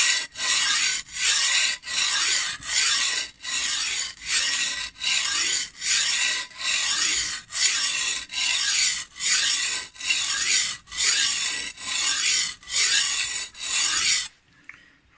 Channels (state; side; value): identical; both; correlation 1.00